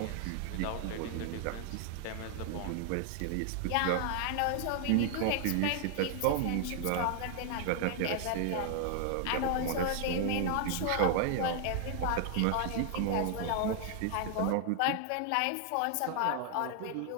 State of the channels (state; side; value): different; both; correlation 0.00